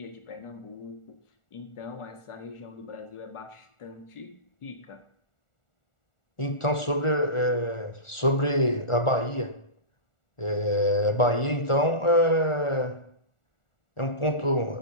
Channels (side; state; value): right; late; 1.4 ms